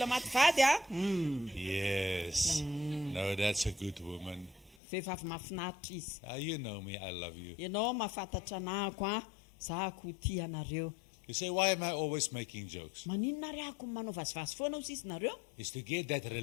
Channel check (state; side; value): drops out; right; at 4.8 s